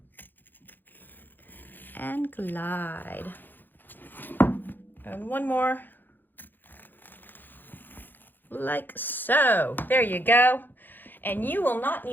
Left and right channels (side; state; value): right; late; 0.091 ms